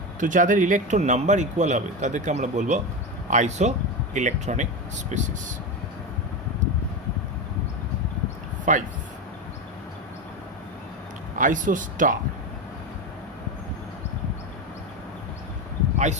তো যাদের electron number equal হবে তাদেরকে আমরা বলবো আইসো electronic species. 5. Isostar.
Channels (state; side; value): normal; both; correlation 0.17